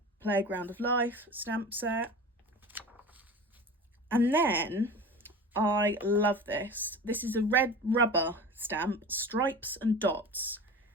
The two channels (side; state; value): both; normal; correlation 0.34